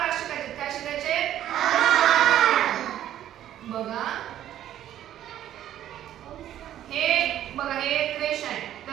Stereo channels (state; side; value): quieter; left; 11.8 dB